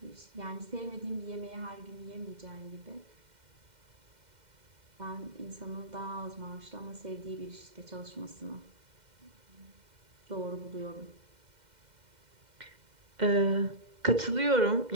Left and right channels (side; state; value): left; late; 2.1 ms